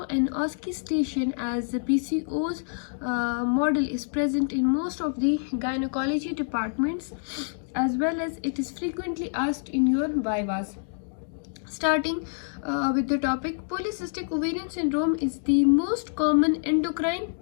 an OSCE station, as the PCOS model is present in most of the gynecology departments, as well as it is frequently asked in your vivas. Starting with the topic, polycystic ovarian syndrome is the most common endocrine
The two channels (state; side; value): silent; right; digital silence